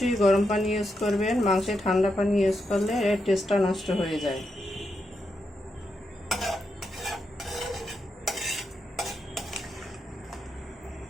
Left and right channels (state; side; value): normal; both; correlation 0.84